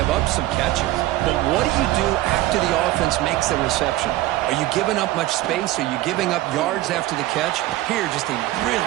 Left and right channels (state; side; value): quieter; left; 16.3 dB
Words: up some catches. But what do you do after the offense makes the reception? Are you giving up much space? Are you giving up yards after the catch? Here, just a